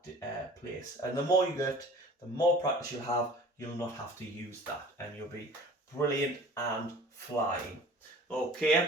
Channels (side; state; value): both; normal; correlation 0.45